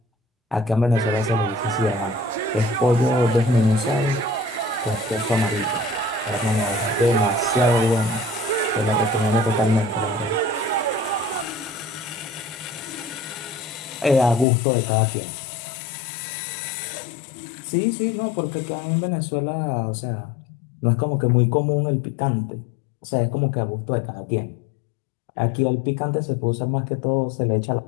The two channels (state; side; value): drops out; right; at 14.5 s